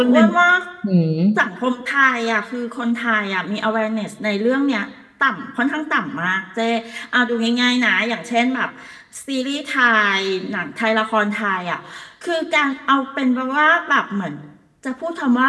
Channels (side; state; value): both; identical; correlation 1.00